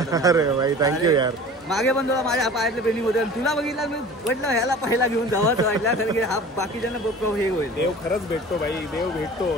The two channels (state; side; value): normal; both; correlation 0.42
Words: अरे भाई थँक्यू यार. मागे पण तुला माझ्या पायातले पेनिंग होते, तुला बघितलं मी म्हटलं ह्याला पहिला घेऊन जावंच वाटलं, कारण की हा बाकीच्यांना हे होईल. देव खरंच भेटतो भाई. देव भेटतो